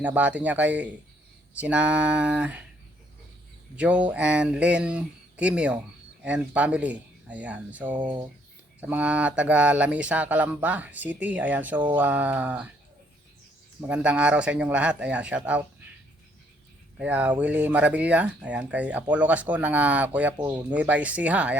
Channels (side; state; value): both; normal; correlation 0.67